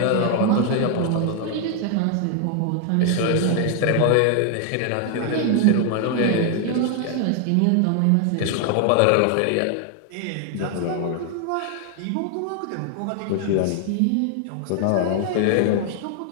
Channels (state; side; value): different; both; correlation 0.00